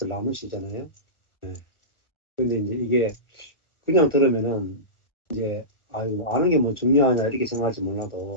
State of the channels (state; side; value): late; right; 1.4 ms